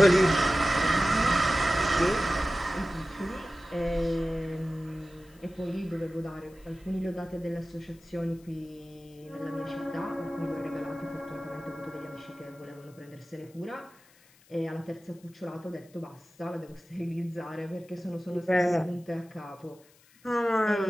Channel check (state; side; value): noise; left; hiss, 28 dB below the sound